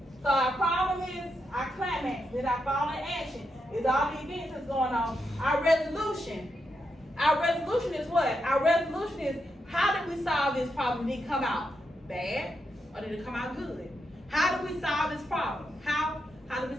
So our problem is our climax, then our fall in action is all the events that's going on. Our resolution is what? Our resolution is how did we solve this problem? Did it come out bad or did it come out good? How do we solve this problem? How do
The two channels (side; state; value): both; normal; correlation 0.83